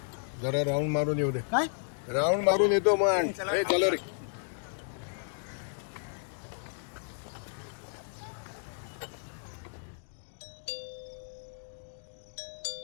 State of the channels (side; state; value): right; silent; digital silence